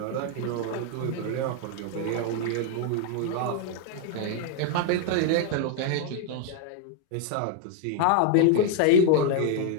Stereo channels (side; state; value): both; different; correlation 0.00